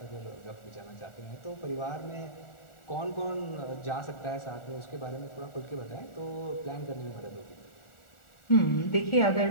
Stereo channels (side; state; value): right; late; 1.4 ms